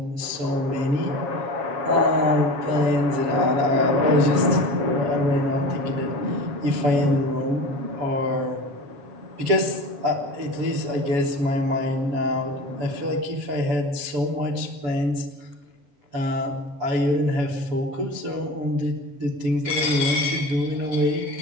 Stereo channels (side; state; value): left; late; 7.2 ms